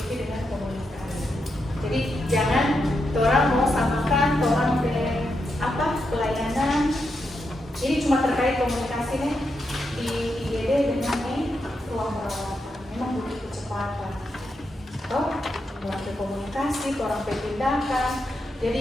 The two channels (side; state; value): both; normal; correlation 0.84